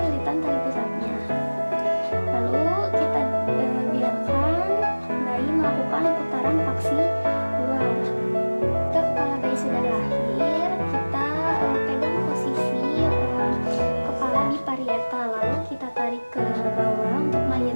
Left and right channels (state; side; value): inverted; both; correlation -1.00